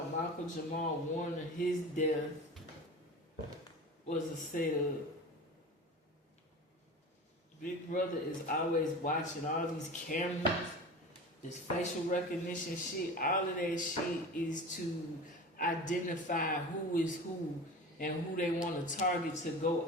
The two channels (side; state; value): both; normal; correlation 0.33